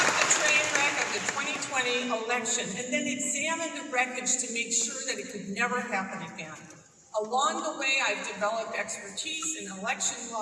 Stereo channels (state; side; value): identical; both; correlation 1.00